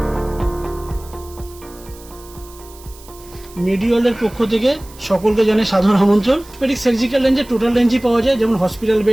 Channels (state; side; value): noise; right; hiss, 22 dB below the sound